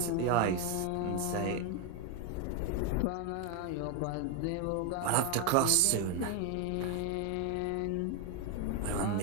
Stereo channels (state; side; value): different; both; correlation 0.01